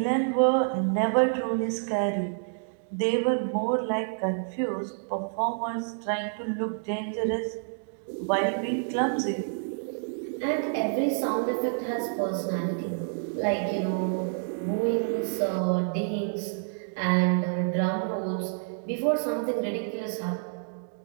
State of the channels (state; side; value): silent; left; digital silence